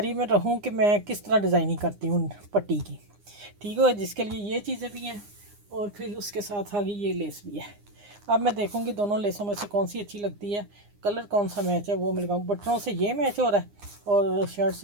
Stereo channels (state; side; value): late; left; 9.8 ms